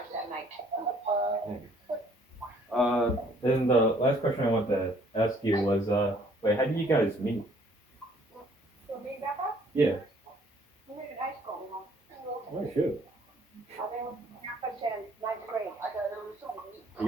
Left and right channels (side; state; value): both; normal; correlation 0.61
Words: that night. Then the last question I wanted to ask you was, wait, how did you guys meet? So me and Grandpa? Yeah. We met in high school. Oh shoot. Then Grandpa's in 9th grade. You